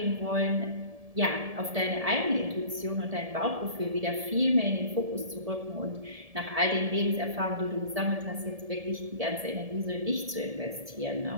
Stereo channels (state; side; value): late; left; 1.7 ms